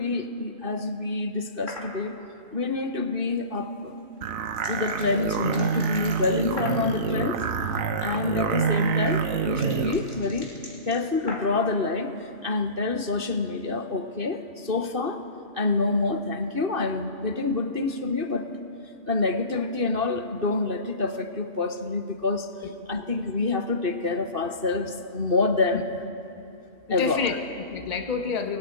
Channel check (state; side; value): late; left; 2.6 ms